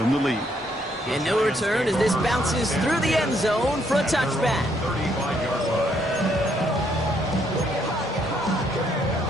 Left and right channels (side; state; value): both; normal; correlation 0.72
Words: the lead. And no return as this bounces through the end zone for a touchback.